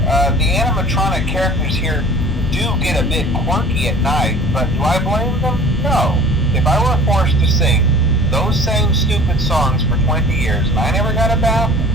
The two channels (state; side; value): normal; both; correlation 0.45